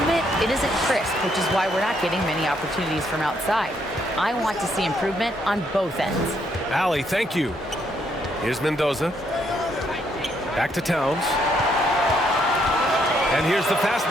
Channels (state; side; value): normal; both; correlation 0.73